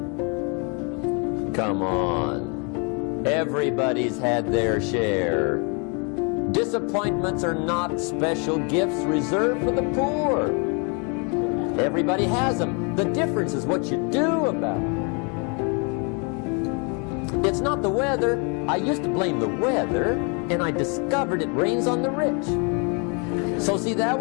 Come on. Everybody's had their share. Disappointments are not special gifts reserved for the poor. Everybody has them. The difference is what you do about it. It's not the weather. I used to blame the weather, and I discovered it rains on the rich. So see, that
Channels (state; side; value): quieter; right; 35.1 dB